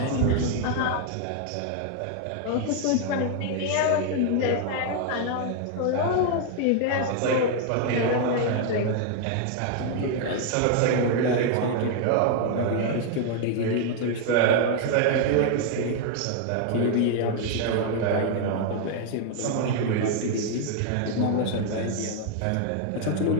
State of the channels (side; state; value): both; different; correlation 0.00